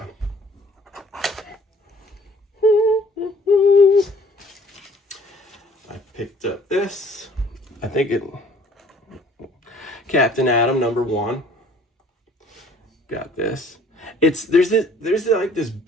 I picked up this. I think it... Captain Atom #1. Got this. There's like this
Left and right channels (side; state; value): both; normal; correlation 0.55